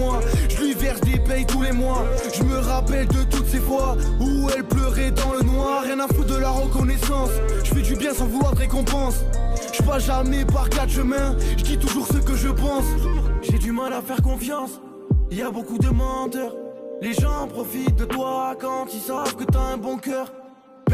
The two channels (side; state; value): both; identical; correlation 1.00